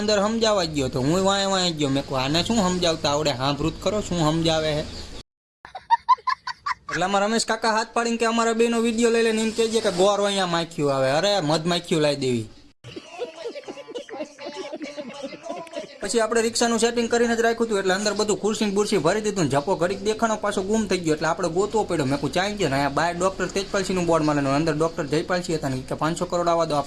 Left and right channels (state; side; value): identical; both; correlation 1.00